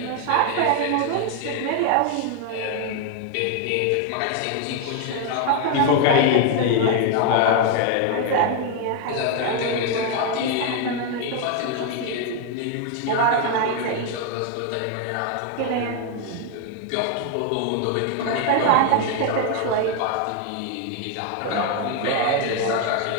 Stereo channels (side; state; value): both; different; correlation 0.01